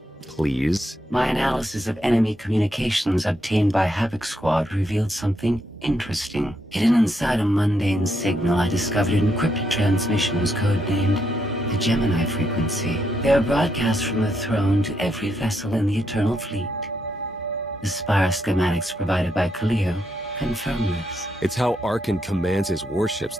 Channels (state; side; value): normal; both; correlation 0.79